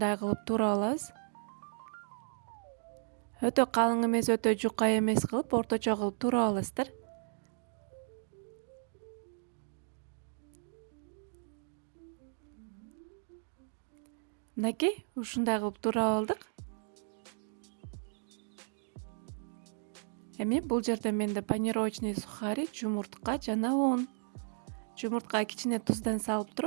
кылып туурап алабыз. Өтө калың эмес, өтө жука эмес кылып, орточо кылып туурап аласыздар. Мынакей, ушундай кылып туурап алдык. Эми бул жерде менде панировочный сухари, жумуртка жана un. Жумурткага кичине туздан салып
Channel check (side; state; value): left; silent; digital silence